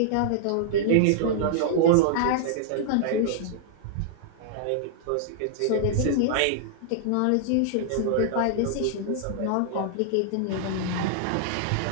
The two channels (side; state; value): both; different; correlation -0.01